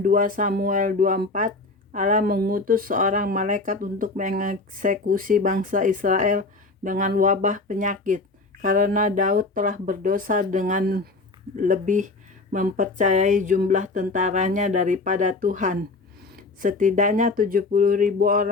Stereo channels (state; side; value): quieter; right; 3.5 dB